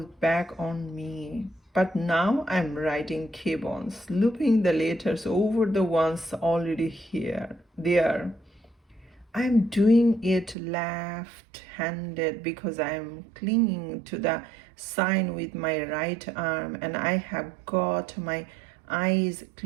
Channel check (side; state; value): left; drops out; at 10.6 s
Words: back on me. But now I'm writing K-Bones, looping the letters over the ones already there. I'm doing it left-handed because I'm clinging to the sign with my right arm and I have got my eyes